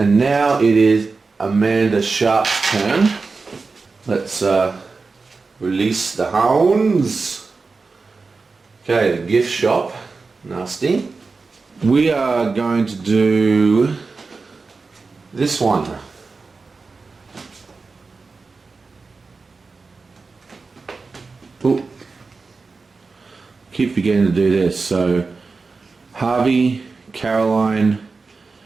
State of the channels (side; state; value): left; quieter; 4.2 dB